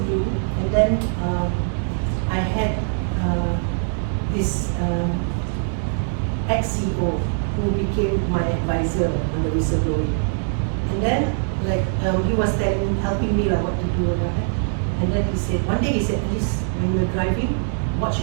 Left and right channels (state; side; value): silent; left; digital silence